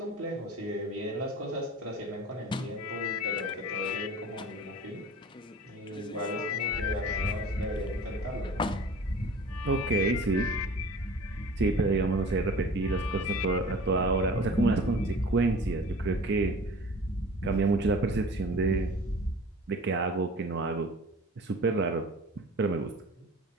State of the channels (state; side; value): normal; both; correlation 0.42